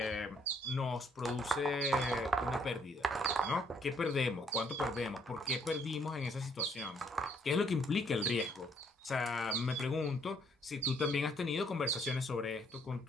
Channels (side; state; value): both; normal; correlation 0.67